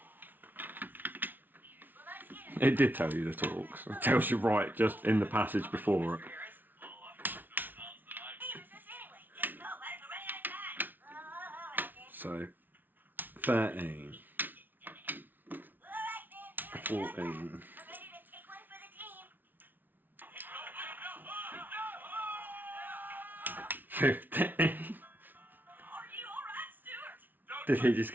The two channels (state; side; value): late; left; 0.087 ms